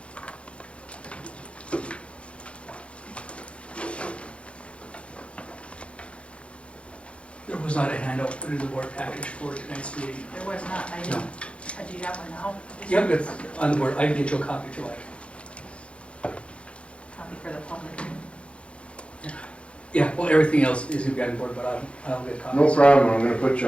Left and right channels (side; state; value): right; late; 0.060 ms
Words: There was not a handout put in the board package for tonight's meeting. There was not, I didn't. Do you have one now? Yep, it's on the board. I can get you a copy if you like. Copy for the public. Yeah, well, everything else is gonna be on the board, but I'll get copies. No problem, I'm gonna put you